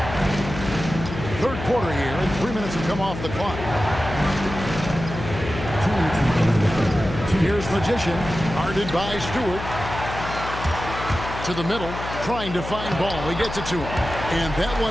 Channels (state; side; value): noise; left; hum, 8 dB below the sound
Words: Third quarter here, and 3 minutes have come off the clock. Here's Magician, guarded by Stewart. To the middle, trying to find Ball. He gets it to him, and that